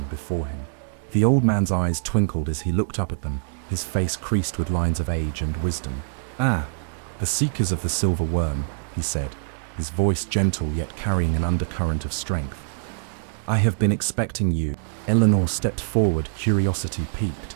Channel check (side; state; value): left; silent; digital silence